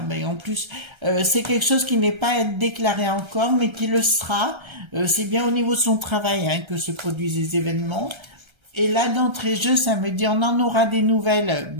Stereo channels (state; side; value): late; left; 1.3 ms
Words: mais en plus, c'est quelque chose qui n'est pas déclaré encore, mais qui le sera. C'est bien au niveau de son travail hein, que se produisent les événements. Et là, d'entrée de jeu, ça me dit, on en aura des nouvelles